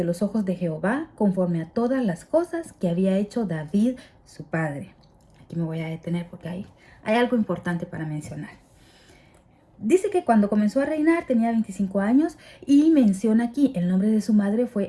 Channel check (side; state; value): both; identical; correlation 1.00